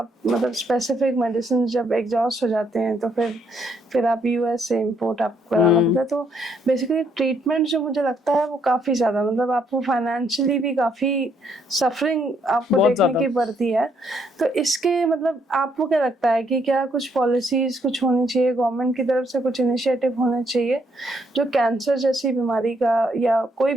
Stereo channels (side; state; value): both; normal; correlation 0.71